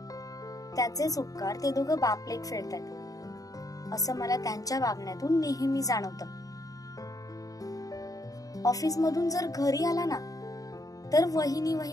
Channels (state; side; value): late; right; 0.17 ms